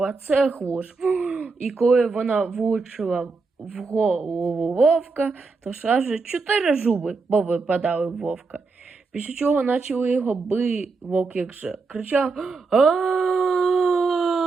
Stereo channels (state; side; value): quieter; left; 4.2 dB